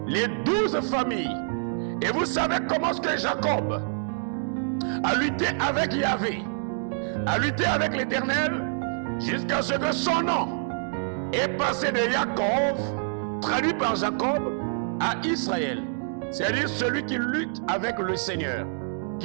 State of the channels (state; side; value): silent; left; digital silence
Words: les 12 familles. Et vous savez comment est-ce que Jacob a lutté avec Yahvé, a lutté avec l'Éternel, jusqu'à ce que son nom est passé de Jacob, traduit par Jacob, à Israël. C'est-à-dire celui qui lutte avec le Seigneur,